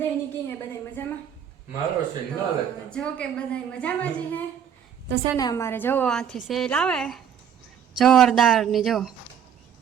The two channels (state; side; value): quieter; left; 8.6 dB